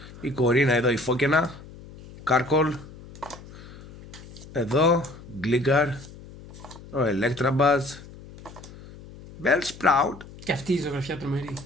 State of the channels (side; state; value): left; noise; hum, 18 dB below the sound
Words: Η Κορίνα εδώ, η Φόκαινα. Carkol. Εδώ. Gligar. Ο Electabuzz. Bellsprout. Και αυτή η ζωγραφιά τρομερή.